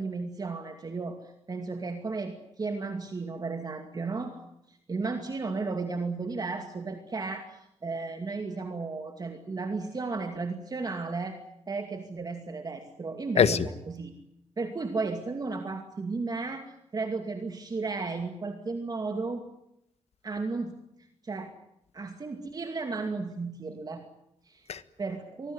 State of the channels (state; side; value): normal; both; correlation 0.63